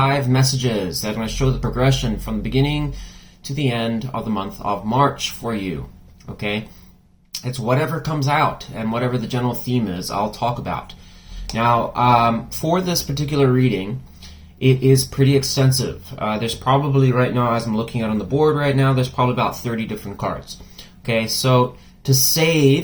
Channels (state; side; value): identical; both; correlation 1.00